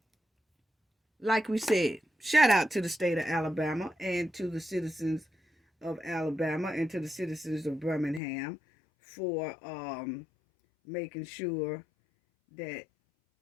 like we said, shout out to the state of Alabama and to the citizens of Alabama and to the citizens of Birmingham for making sure that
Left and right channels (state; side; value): drops out; right; at 8.2 s